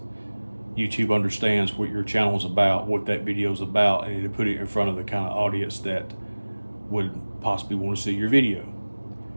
YouTube understands what your channel is about, what that video is about, and it'll put it in front of the kind of audience that would possibly want to see your video.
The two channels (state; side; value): inverted; both; correlation -1.00